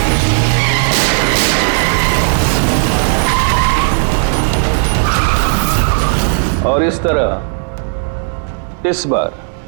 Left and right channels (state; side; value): silent; left; digital silence